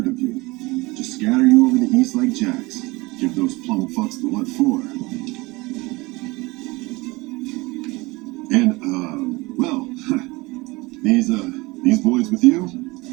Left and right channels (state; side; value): quieter; left; 23.1 dB